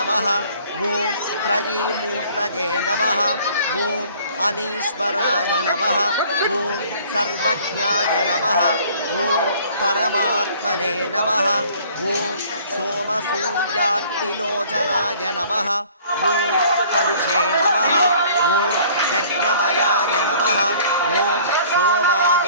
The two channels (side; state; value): both; inverted; correlation -0.53